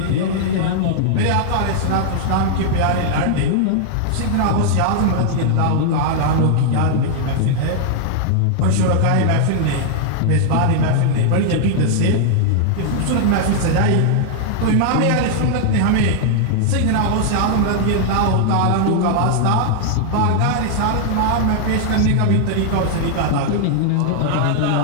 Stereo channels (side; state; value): both; different; correlation -0.01